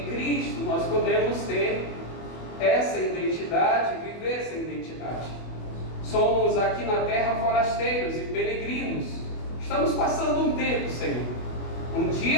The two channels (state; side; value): late; right; 24 ms